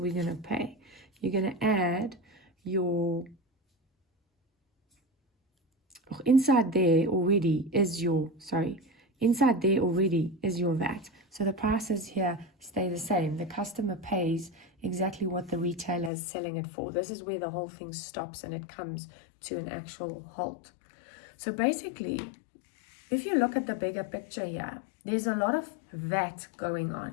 we're going to pay. You're going to add your, inside there already is your VAT. So the prices here stay the same. The customer pays exactly what the retailer is selling it for. This is where the whole thing stops and it comes to an actual halt. So basically, if you look at the bigger picture here, there's a lot of VAT going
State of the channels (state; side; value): drops out; right; at 16.1 s